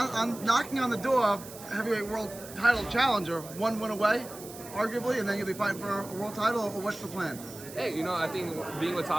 knocking on the door of heavyweight world title challenger, one win away, arguably, and then you'll be fighting for a world title, or what's the plan? Hey, I think being with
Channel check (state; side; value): noise; right; hiss, 15 dB below the sound